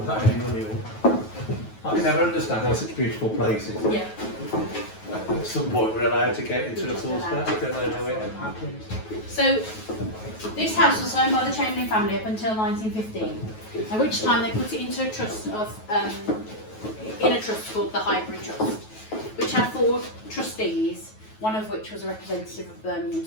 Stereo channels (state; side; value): late; right; 9.3 ms